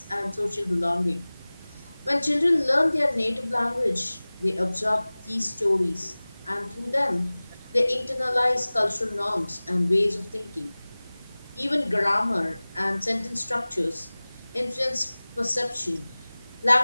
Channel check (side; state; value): both; inverted; correlation -0.99